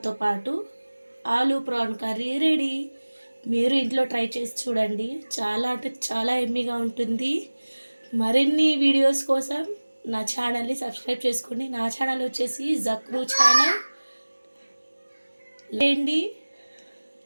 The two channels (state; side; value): inverted; both; correlation -1.00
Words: పాటు ఆలూ ప్రాన్ కర్రీ రెడీ. మీరు ఇంట్లో ట్రై చేసి చూడండి, చాలా అంటే చాలా ఎమ్మీగా ఉంటుంది. మరిన్ని వీడియోస్ కోసం నా ఛానల్ని సబ్స్క్రైబ్ చేసుకోండి. నా ఛానల్ వచ్చేసి జక్రూ ఛానల్. లేండి,